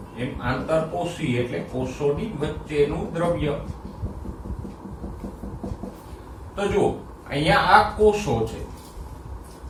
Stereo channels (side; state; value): both; identical; correlation 1.00